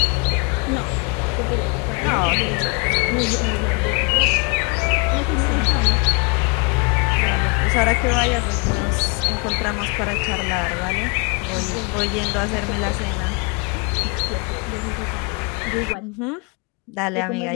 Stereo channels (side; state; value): right; quieter; 32.0 dB